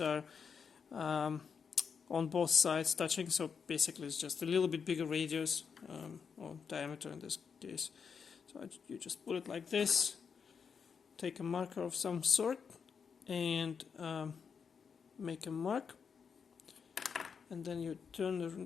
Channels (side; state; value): right; quieter; 6.3 dB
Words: on both sides touching, so basically it's just a little bit bigger radius or diameter in this case. So you just put it like this, take a marker of some sort and make a mark, and then you turn